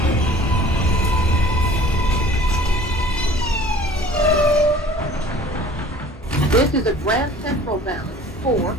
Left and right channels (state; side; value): normal; both; correlation 0.48